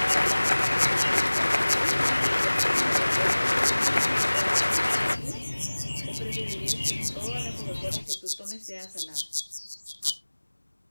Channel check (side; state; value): both; inverted; correlation -1.00